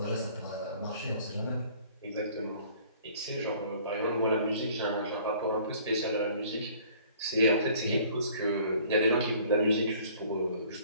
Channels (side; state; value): both; inverted; correlation -0.54